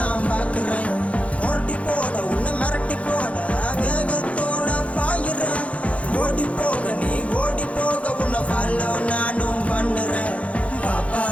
பாக்குறேன் ஓட்டி போட உன்னை மிரட்டி போட வேகத்தோட பாயிறேன் ஓடி போக நீ ஓடி போக உன்னை ஃபாலோ நானும் பண்ணுறேன் பாப்பா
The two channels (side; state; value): right; late; 0.064 ms